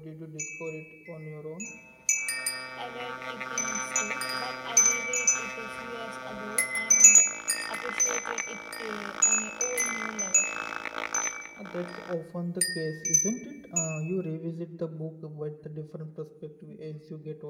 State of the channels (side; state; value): both; identical; correlation 1.00